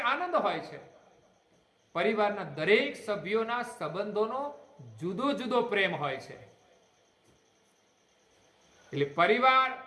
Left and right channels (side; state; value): both; identical; correlation 1.00